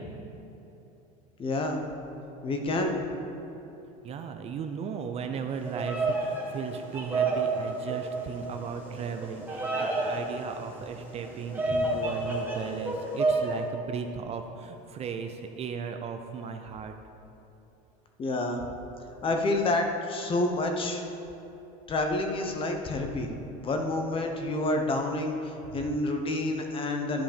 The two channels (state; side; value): normal; both; correlation 0.43